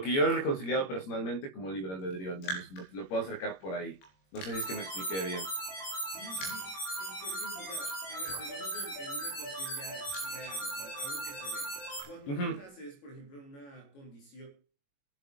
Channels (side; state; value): right; late; 21 ms